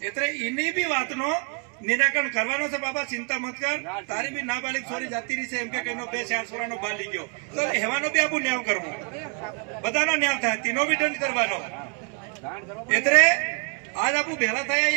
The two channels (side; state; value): left; quieter; 38.8 dB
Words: એટલે એની બી વાતનો નિરાકરણ કરવાનો છે. બાબા ચિંતા મત કર, તારી બી નાબાલિગ છોરી જાતી રહી છે એમ કે એનો 2-4 છોરાનો બાલ લઈ ગયો તો એવાનો બી આપણું ન્યાય કરવું, બધાનો ન્યાય થાય, તેનો બી દંડ કરવાનો. એટલે આજ આપણું ભેળા થયા